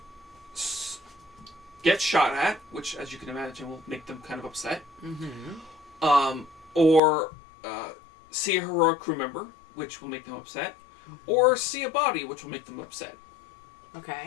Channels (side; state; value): right; drops out; at 7.0 s